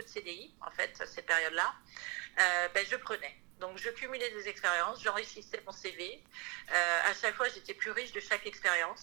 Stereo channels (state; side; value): quieter; left; 29.4 dB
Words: de CDI, en fait, cette période-là, je prenais. Donc, je cumulais des expériences, j'enrichissais mon CV. À chaque fois, j'étais plus riche de chaque